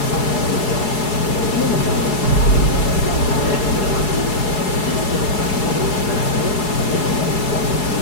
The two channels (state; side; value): late; right; 4.7 ms